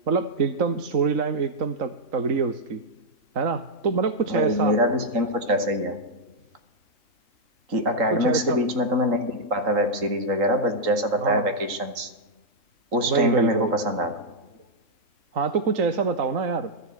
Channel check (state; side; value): late; left; 3.7 ms